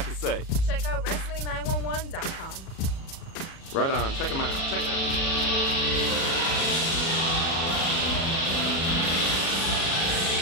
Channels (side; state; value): right; late; 37 ms